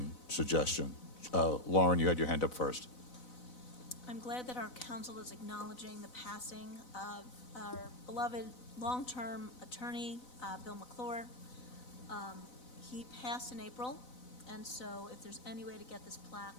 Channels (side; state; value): right; late; 4.0 ms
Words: suggestion? Lauren, you had your hand up first. I'm glad that our council is acknowledging the passing of our beloved long-term attorney, Bill McClure. He passed in April, and so if there's any way to get this plaque